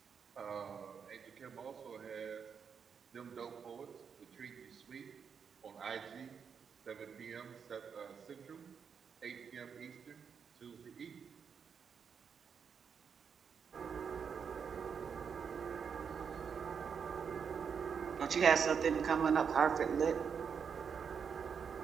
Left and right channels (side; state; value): left; quieter; 6.7 dB